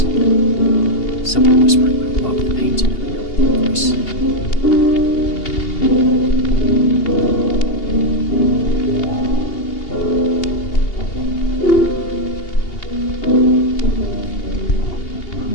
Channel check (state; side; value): late; right; 2.8 ms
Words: someone whispering above the paint in a really deep voice.